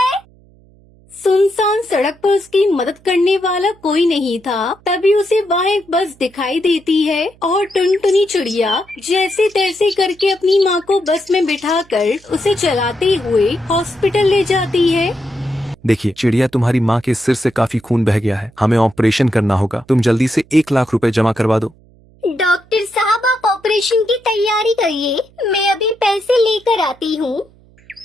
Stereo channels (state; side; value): noise; right; hum, 28 dB below the sound